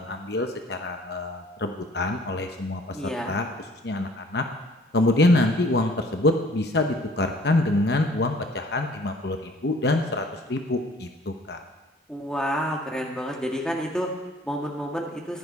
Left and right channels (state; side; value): normal; both; correlation 0.54